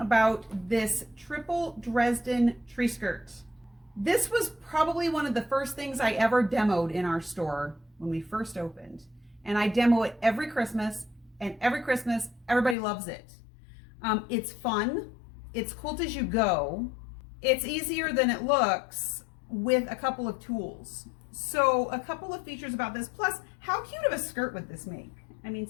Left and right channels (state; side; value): drops out; right; at 12.8 s